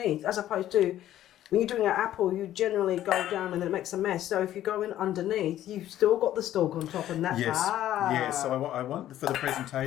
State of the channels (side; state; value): right; quieter; 12.7 dB